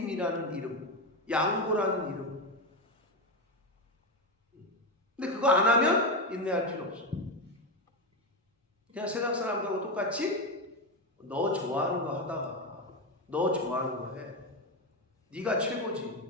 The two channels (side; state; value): both; normal; correlation 0.12